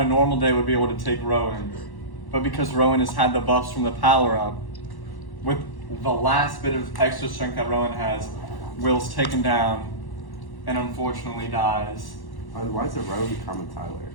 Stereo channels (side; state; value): right; late; 1.1 ms